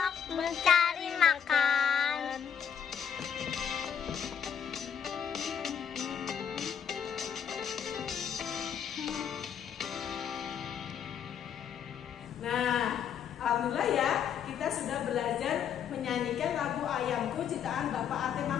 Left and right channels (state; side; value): quieter; right; 8.1 dB